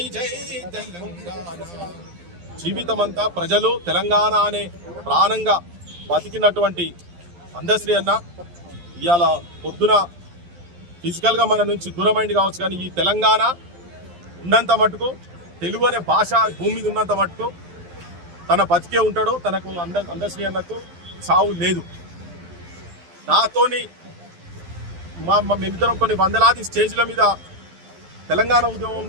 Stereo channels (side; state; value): left; late; 12 ms